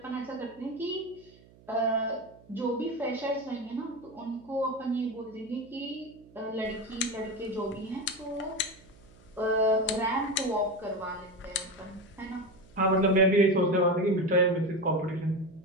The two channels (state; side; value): noise; right; hum, 25 dB below the sound